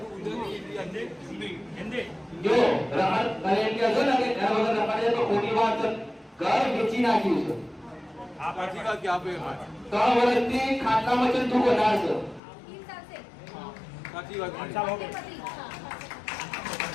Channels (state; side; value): drops out; right; at 12.4 s